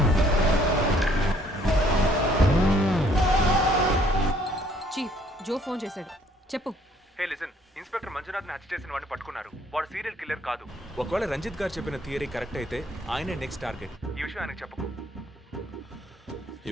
Chief, Joe phone చేశాడు. చెప్పు. హే లిసన్, ఇన్స్పెక్టర్ మంజునాథ్ని హత్య చేసిన వాడిని పట్టుకున్నారు. వాడు సీరియల్ కిల్లర్ కాదు. ఒకవేళ రంజిత్ గారు చెప్పిన థియరీ కరెక్ట్ అయితే ఆయనే నెక్స్ట్ టార్గెట్. ఈ విషయం ఆయనకు చెప్పకు.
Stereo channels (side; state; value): both; normal; correlation 0.62